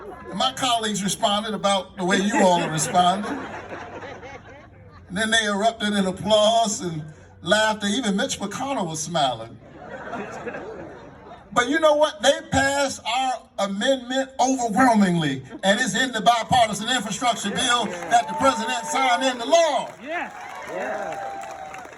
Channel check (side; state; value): both; identical; correlation 1.00